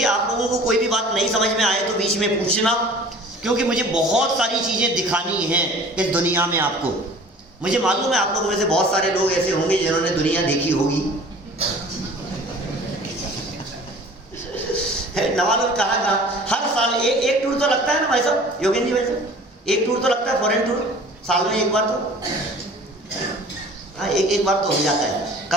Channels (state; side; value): normal; both; correlation 0.46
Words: आप लोगों को कोई भी बात नहीं समझ में आए तो बीच में पूछना, क्योंकि मुझे बहुत सारी चीज़ें दिखानी हैं इस दुनिया में आपको। मुझे मालूम है आप लोगों में से बहुत सारे लोग ऐसे होंगे जिन्होंने दुनिया देखी होगी। नवाजुल कहा हर साल एक टूर तो लगता है ना भाई साहब, योगेंद्र जी भाई साहब, एक टूर तो लगता है, फॉरेन टूर साल में एक बार तो, हाँ एक बार तो हो जाता है।